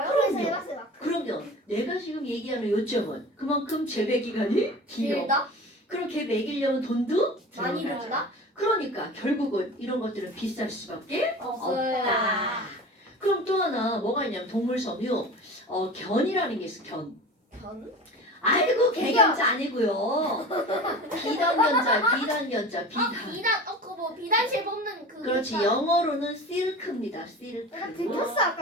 해봤어요. 마크. 그러면 내가 지금 얘기하는 요점은 그만큼 재배 기간이 길어. 길다? 그럼 걔 먹이려면 돈도 많이 들어가죠. 들다? 그러니까 결국은 이런 것들은 비쌀 수밖에 없어요. 없다. 그럼 또 하나 뭐가 있냐면 동물 섬유 견이라는 게 있어. 견. 견? 아이고 개견자 아니고요. 비단견자 비단. 그거 뭐 비단실 뽑는 그. 그렇지 영어로는 실크입니다. 실크. 내가 들켰어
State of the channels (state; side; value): normal; both; correlation 0.35